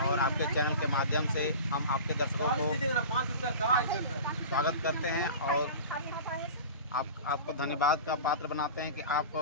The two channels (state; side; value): inverted; both; correlation -0.35